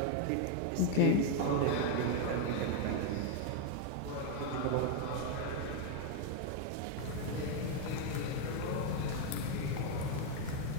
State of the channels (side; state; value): both; different; correlation 0.01